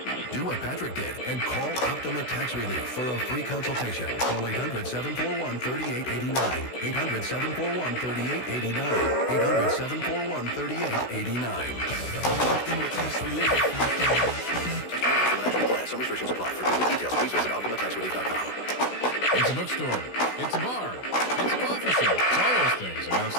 Do what Patrick did and call Optima Tax Relief for a free consultation. Call 800-741-3889. 800-741-3889. 800-741-3889. Optima Tax Relief. Some restrictions apply. For complete details, please visit OptimaTaxRelief.com. It's a bookstore. It's a bar. It's a coffee shop. It's all those things. And now it's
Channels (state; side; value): late; right; 16 ms